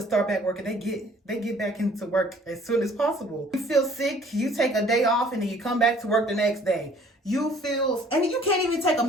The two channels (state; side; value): normal; both; correlation 0.55